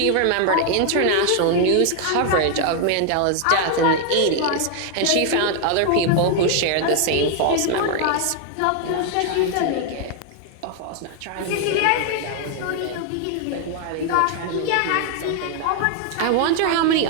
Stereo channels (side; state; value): both; different; correlation 0.00